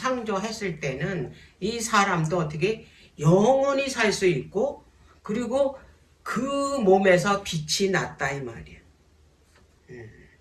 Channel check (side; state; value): both; identical; correlation 1.00